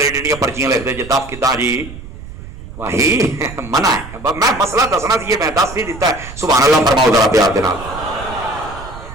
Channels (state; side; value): noise; right; rumble, 14 dB below the sound